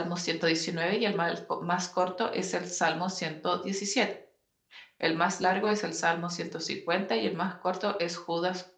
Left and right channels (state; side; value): identical; both; correlation 1.00